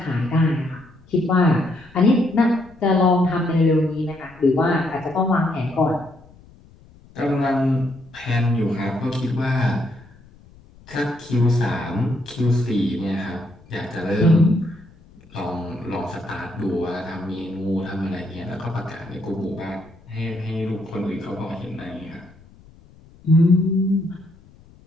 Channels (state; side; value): noise; left; rumble, 25 dB below the sound